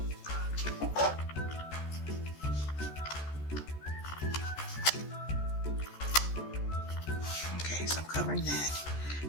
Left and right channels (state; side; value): late; right; 14 ms